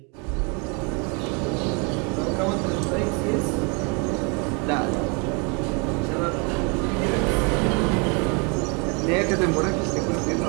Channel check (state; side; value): quieter; left; 33.1 dB